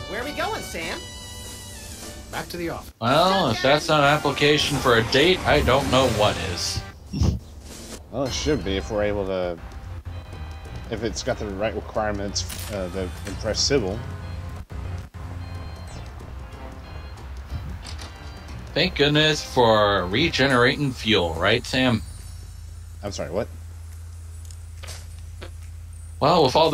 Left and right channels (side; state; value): both; identical; correlation 1.00